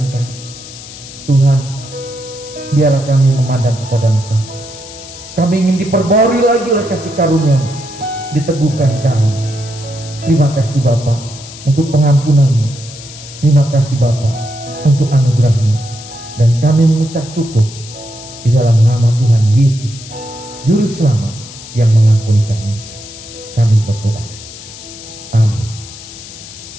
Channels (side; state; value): left; noise; hiss, 15 dB below the sound